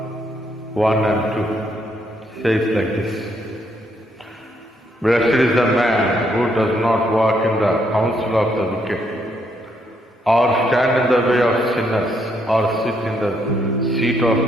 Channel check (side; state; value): both; normal; correlation 0.73